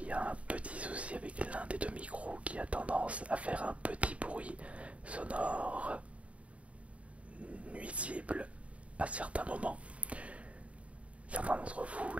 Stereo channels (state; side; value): late; left; 0.065 ms